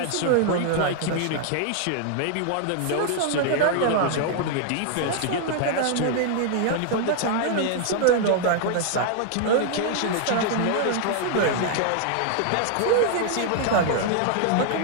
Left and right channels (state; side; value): different; both; correlation 0.00